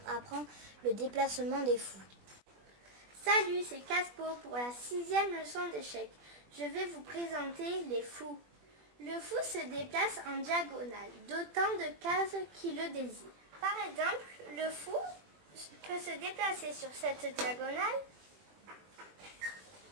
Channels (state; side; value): late; left; 21 ms